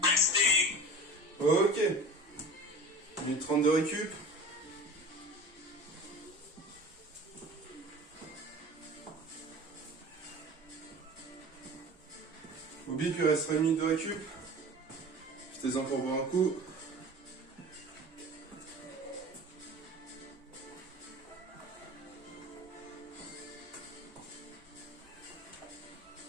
Resting. Ok. 1 minute 30 de récup. Oublie qu'il restera 1 minute de récup. Jetez-en pour boire un coup.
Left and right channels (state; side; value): normal; both; correlation 0.38